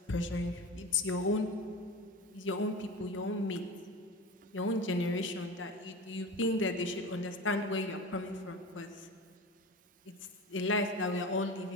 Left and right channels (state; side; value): normal; both; correlation 0.30